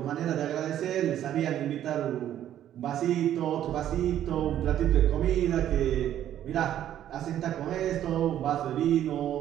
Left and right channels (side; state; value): left; quieter; 11.3 dB